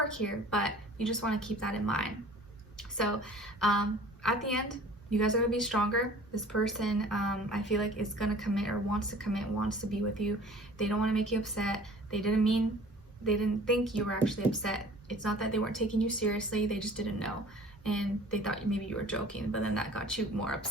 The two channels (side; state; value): both; normal; correlation 0.47